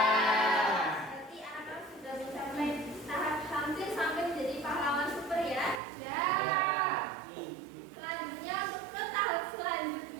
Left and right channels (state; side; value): drops out; left; at 5.8 s